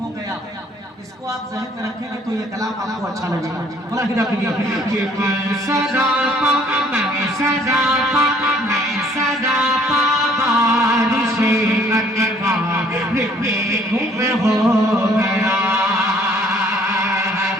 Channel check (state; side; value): normal; both; correlation 0.59